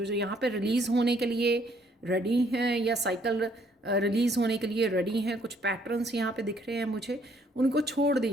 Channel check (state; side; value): normal; both; correlation 0.66